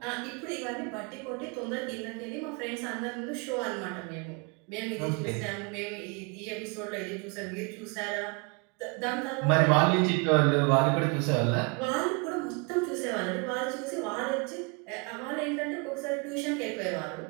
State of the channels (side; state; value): left; quieter; 31.8 dB